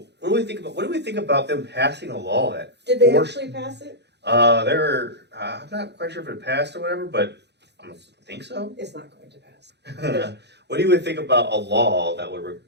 what do we think about? What do we think about them passing a law that? Did they actually pass it? I'm not quite sure if it passed or whatever, but I think so. It's not going to pass. What do you think about a law that would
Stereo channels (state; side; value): late; left; 0.50 ms